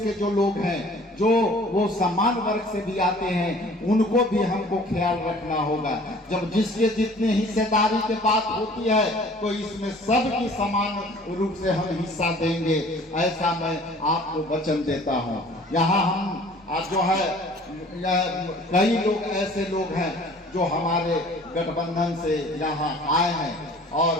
जो लोग हैं, जो वो समान वर्ग से भी आते हैं, उनको भी हमको ख्याल रखना होगा। जब जिसके जितने हिस्सेदारी की बात होती है तो इसमें सबकी समान रूप से हम हिस्सा देंगे, ऐसा मैं आपको वचन देता हूं। यहाँ हम जो है कई लोग ऐसे लोग हैं जो हमारे गठबंधन से यहाँ आए हैं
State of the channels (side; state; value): both; normal; correlation 0.50